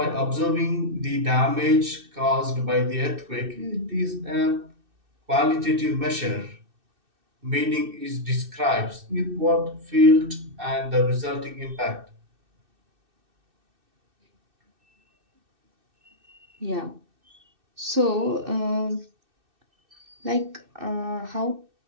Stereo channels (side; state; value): left; late; 2.6 ms